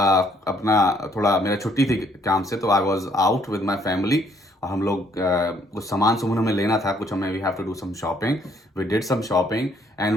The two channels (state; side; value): normal; both; correlation 0.66